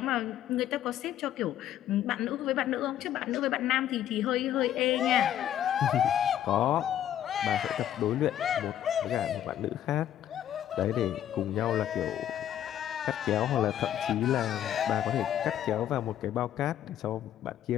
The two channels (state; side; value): quieter; right; 11.1 dB